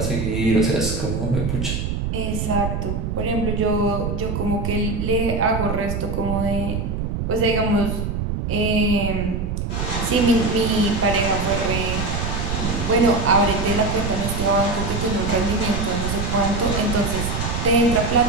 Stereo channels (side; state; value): right; noise; rumble, 2 dB below the sound